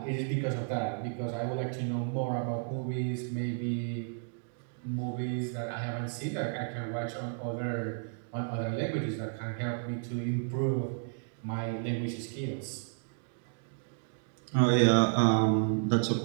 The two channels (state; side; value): silent; left; digital silence